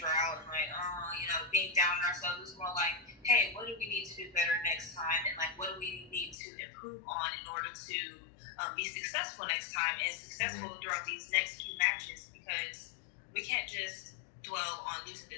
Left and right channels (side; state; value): right; drops out; at 6.4 s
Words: and like, oh, you know, being down on ourselves. It was more like, hey, what do we need to do better next time? And like, what do we need to improve on in order to be successful next time and successful throughout these next few matches? Because we can't just dwell on losing